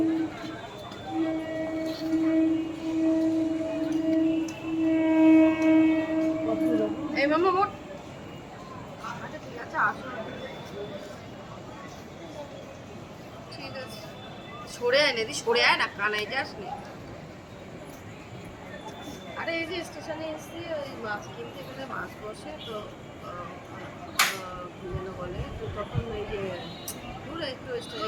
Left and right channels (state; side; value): identical; both; correlation 1.00